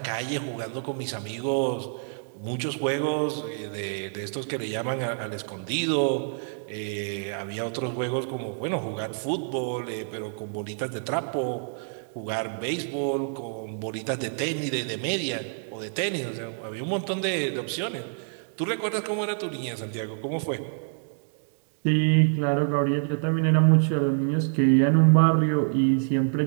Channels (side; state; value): left; silent; digital silence